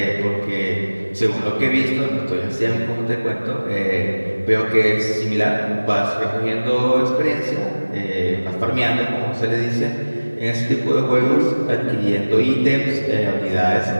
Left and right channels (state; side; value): inverted; both; correlation -1.00